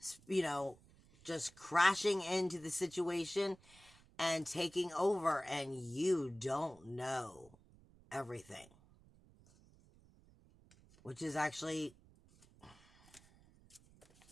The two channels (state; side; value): noise; right; rumble, 26 dB below the sound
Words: you know, just crashing into the situation and taking over, and you don't know everything. Which is actually